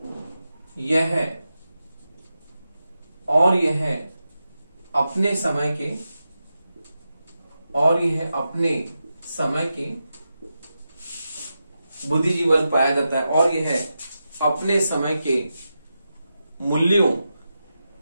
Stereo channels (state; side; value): inverted; both; correlation -0.90